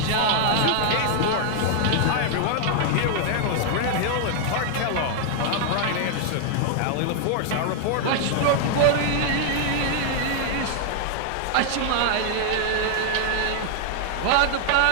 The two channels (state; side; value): different; both; correlation 0.00